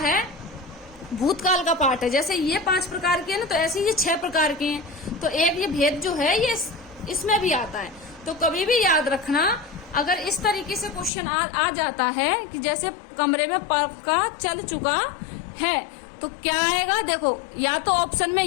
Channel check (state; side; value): drops out; right; at 11.1 s